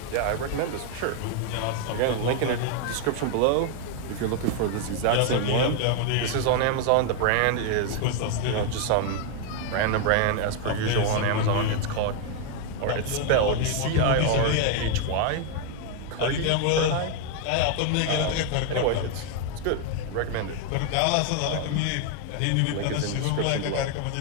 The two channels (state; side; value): different; both; correlation 0.01